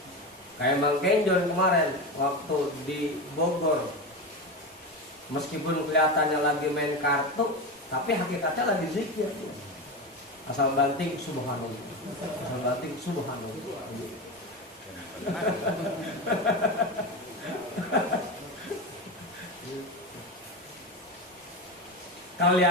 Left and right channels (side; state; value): both; normal; correlation 0.20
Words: Kayak Bang Kenjon kemarin waktu di Bogor, meskipun kelihatannya lagi main kartu, tapi hakikatnya lagi zikir. Asal banting subhanallah, asal banting subhanallah.